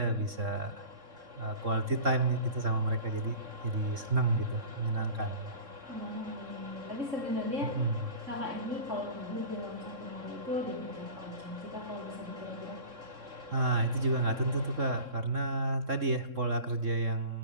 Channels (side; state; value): left; late; 3.6 ms